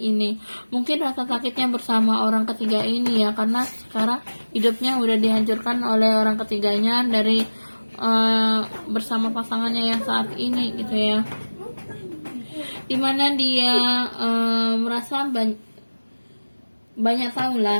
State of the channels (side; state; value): both; inverted; correlation -1.00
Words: mungkin rasa sakitnya bersama orang ketiga ini ya, karena sekarang hidupnya udah dihancurkan oleh orang ketiganya dari bersama pasangannya yang saat ini gitu ya, dimana dia merasa banyak tahu